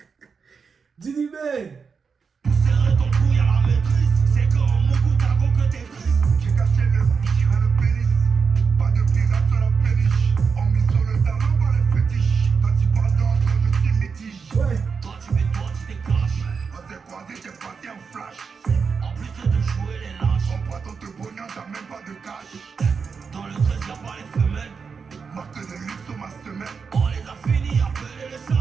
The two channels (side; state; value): left; quieter; 5.6 dB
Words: Didi Ben! Pousserait ton couille à la maîtrise. C'est quand Moku Tago que t'es triste. J'ai caché le bichon et le pénis. Pas de pirate sur la péniche. On mise sur le talon par les fétiches. Quand tu parles d'entre je suis métige. Ouais! Toi tu mets toi tu déclenches. On s'est croisés, j'ai passé un flash. En plus de jouer les lâches. On prend ton te pognon, t'as même pas de cash. Dans le 13 y'a pas les femelles. Marque de luxe sur ma semelle. On les a finis, appelez les